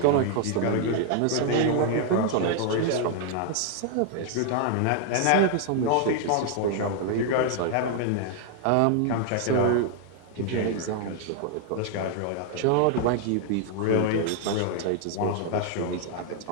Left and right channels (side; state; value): both; different; correlation 0.00